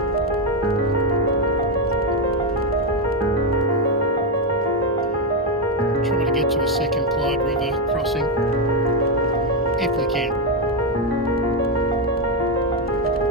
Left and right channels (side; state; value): both; normal; correlation 0.05